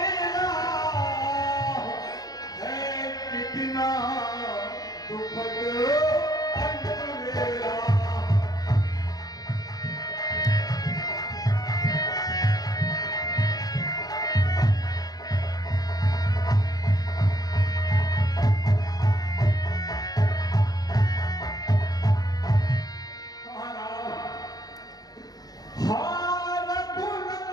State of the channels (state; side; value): late; right; 0.19 ms